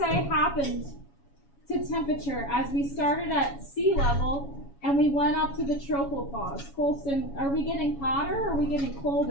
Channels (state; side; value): late; right; 7.2 ms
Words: happened to temperature as we started at sea level and we went up to the tropopause? Colston, are we getting hotter or are we getting